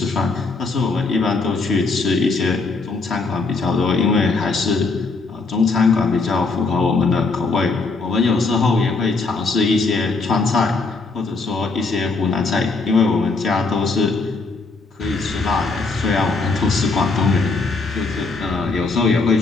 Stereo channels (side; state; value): right; quieter; 3.9 dB